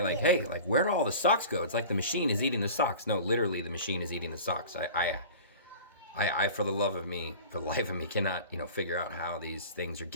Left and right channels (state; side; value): inverted; both; correlation -0.38